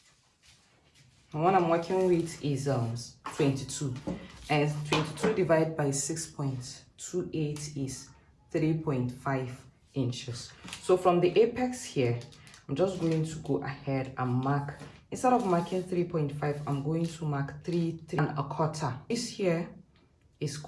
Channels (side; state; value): both; identical; correlation 1.00